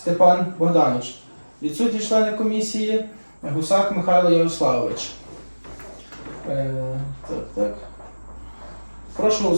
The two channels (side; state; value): both; inverted; correlation -1.00